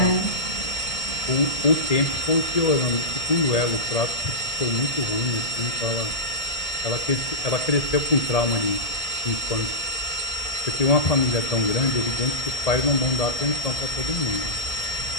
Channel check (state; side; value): late; right; 1.7 ms